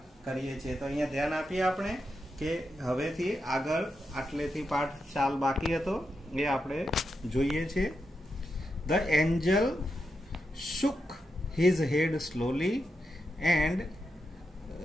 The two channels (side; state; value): both; normal; correlation 0.86